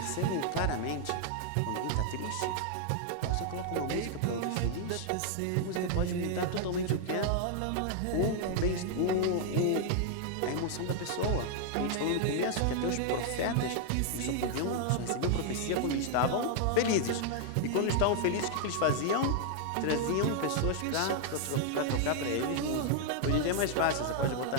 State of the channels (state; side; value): different; both; correlation -0.01